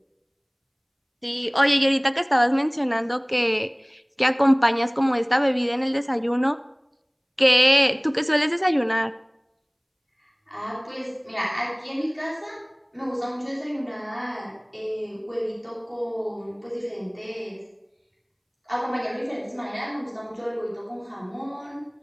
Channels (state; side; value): identical; both; correlation 1.00